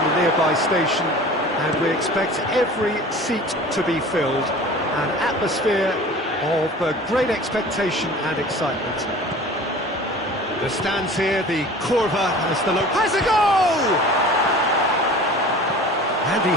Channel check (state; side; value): normal; both; correlation 0.42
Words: the nearby station, and we expect every seat to be filled. An atmosphere of great expectation and excitement. The stands here, the Curva as the look has a goal! And he